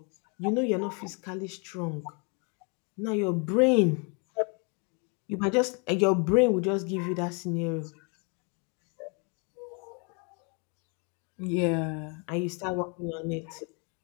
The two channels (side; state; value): right; quieter; 35.1 dB